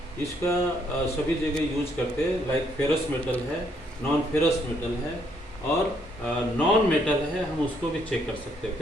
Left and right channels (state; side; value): normal; both; correlation 0.70